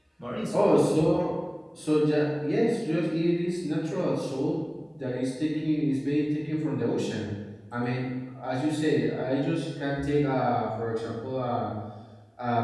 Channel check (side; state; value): both; identical; correlation 1.00